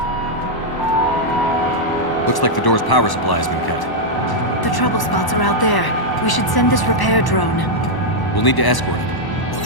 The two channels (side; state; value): right; late; 1.1 ms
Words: Looks like the door's power supply has been cut. The trouble spots are out there. We should send this repair drone. We'll need to escort it.